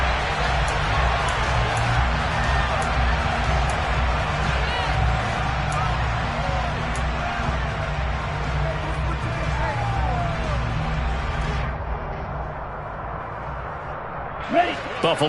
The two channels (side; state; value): both; identical; correlation 1.00